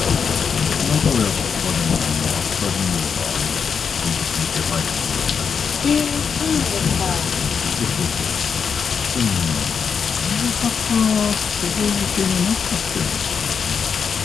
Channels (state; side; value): quieter; right; 6.4 dB